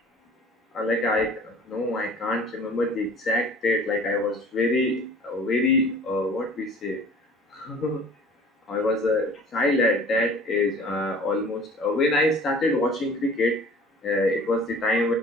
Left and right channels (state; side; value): normal; both; correlation 0.47